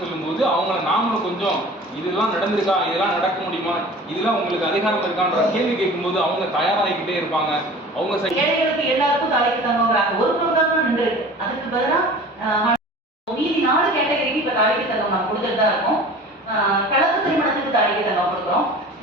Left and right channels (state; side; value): normal; both; correlation 0.41